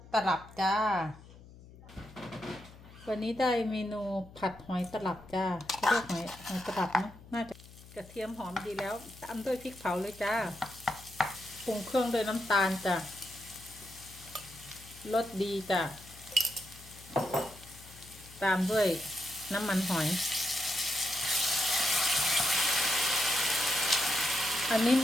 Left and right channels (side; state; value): left; noise; hum, 20 dB below the sound